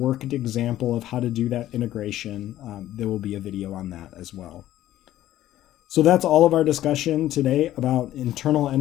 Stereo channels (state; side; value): quieter; right; 13.5 dB